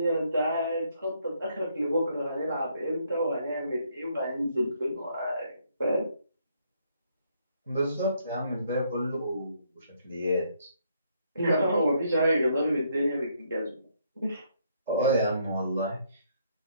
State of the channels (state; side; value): inverted; both; correlation -0.70